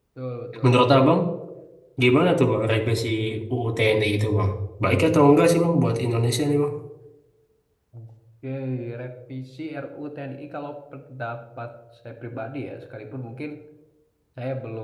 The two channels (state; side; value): identical; both; correlation 1.00